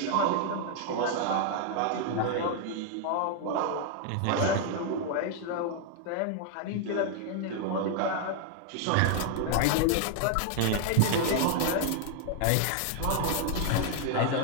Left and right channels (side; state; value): both; different; correlation 0.00